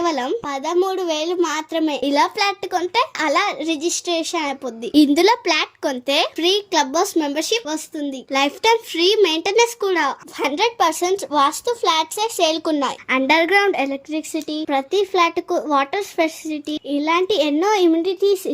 13,000 మాత్రమే. ఇలా ఫ్లాట్ కొంటే అలా రిజిస్ట్రేషన్ అయిపోద్ది. ఇందులో ఫ్లాట్ కొంటే ఫ్రీ క్లబ్ హౌస్ మెంబర్షిప్ వస్తుంది. లైఫ్ టైం ఫ్రీ మెయింటెనెన్స్ కూడా. 100% వాస్తు ఫ్లాట్స్ సేల్కున్నాయి. అండర్ గ్రౌండ్ ఎలక్ట్రిసిటీ, ప్రతి ఫ్లాట్ కు వాటర్ ఫెసిలిటీ, ఇలాంటి ఎన్నో ఇమ్యూనిటీస్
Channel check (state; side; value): identical; both; correlation 1.00